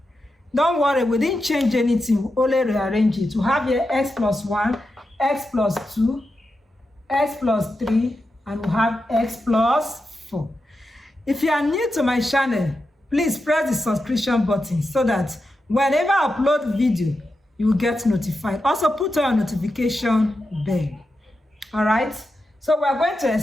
Don't worry, we didn't change anything, we only rearrange it. We have here x plus 1, x plus 2, x plus 3, and we have x plus 4. If you are new to my channel, please press the subscription button so that whenever I upload video, you will get notified. Also put on notification bell. Alright, so we are going to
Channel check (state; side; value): normal; both; correlation 0.89